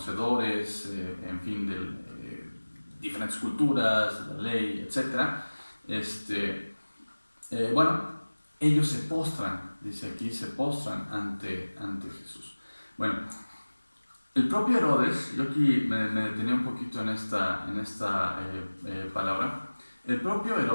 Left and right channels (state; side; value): inverted; both; correlation -1.00